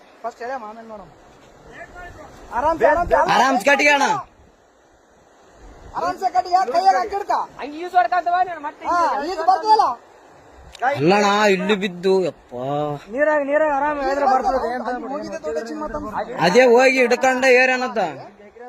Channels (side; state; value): both; identical; correlation 1.00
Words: ಫಸ್ಟ್ ಹೇಳ ಆಮೇಲೆ ನೋಡಮ್ ಆರಾಮ್ ಕಟ್ಟಿಗೆ ಅಣ್ಣ ಆರಾಮ್ಸೆ ಕಟ್ಟಿಗೆ ಕೈಯಾಗ ಹಾಕಿಡ್ಕ ಈಜು ಬರ್ತದಲ್ಲ ಅಲ್ಲಣ್ಣ ಇಲ್ಲಿ ಬಿದ್ದು ಯಪ್ಪ ನೀರಾಗ ಆರಾಮ್ ಬರ್ತದೆ ಅದೇ ಹೋಗಿ ಹಿಡ್ಕೊಂಡ ಏರೇನತ್ತ